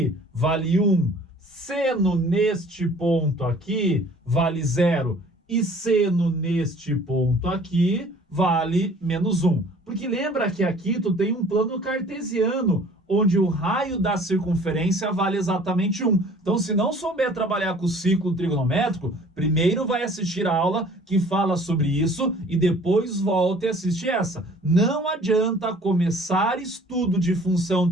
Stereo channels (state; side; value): normal; both; correlation 0.51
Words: vale 1. Seno neste ponto aqui vale 0. E seno neste ponto aqui vale menos 1. Porque lembra que aqui tu tem um plano cartesiano, onde o raio da circunferência vale exatamente 1. Então, se não souber trabalhar com o ciclo trigonométrico, primeiro vai assistir a aula que fala sobre isso e depois volta e assiste essa. Não adianta começar estudo de